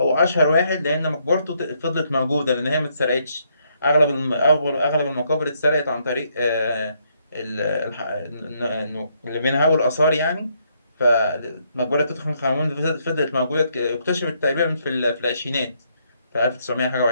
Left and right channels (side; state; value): both; inverted; correlation -0.73